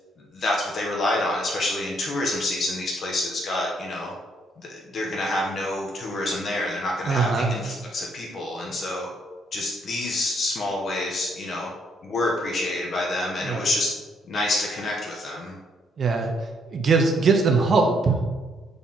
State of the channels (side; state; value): both; normal; correlation 0.71